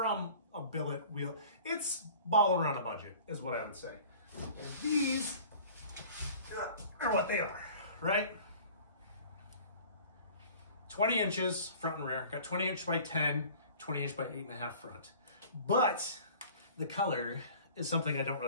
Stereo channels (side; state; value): both; inverted; correlation -0.46